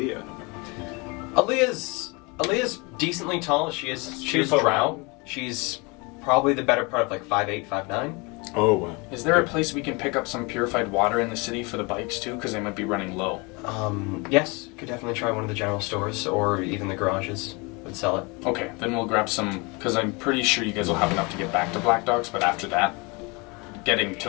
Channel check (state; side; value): quieter; right; 28.4 dB